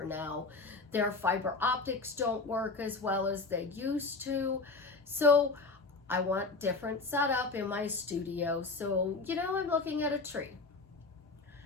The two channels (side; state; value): right; quieter; 3.8 dB